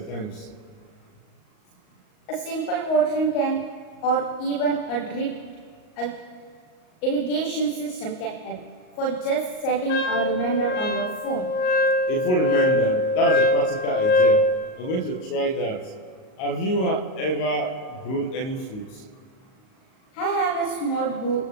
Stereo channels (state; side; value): late; right; 38 ms